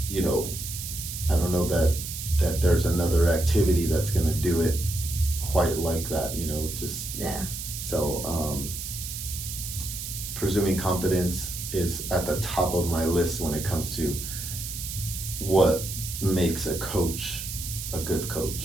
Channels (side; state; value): right; noise; hiss, 7 dB below the sound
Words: you know, I don't know that there's another activity that's gonna do it quite like that, you know, just so presuming competence is at the top of my list when it comes to what makes a coach a good